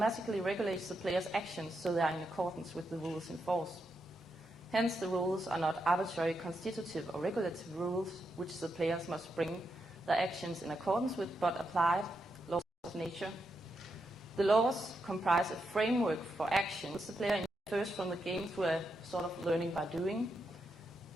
regulates the player's actions so they are in accordance with the rules in force. Hence, the rules are not arbitrary constitutive or regulative rules which the players must bring their actions in accordance with, but applied laws of nature. The laws comprise a framework for action which the player infers from the game through a sort of learning by doing.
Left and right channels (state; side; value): normal; both; correlation 0.83